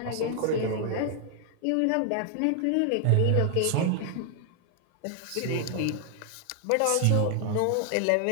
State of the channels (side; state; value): both; different; correlation 0.00